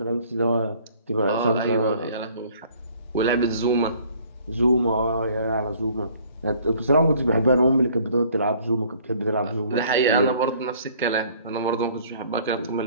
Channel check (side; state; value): both; inverted; correlation -0.57